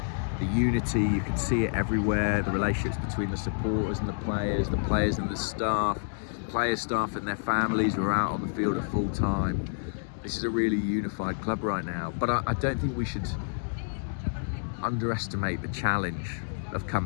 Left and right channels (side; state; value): right; silent; digital silence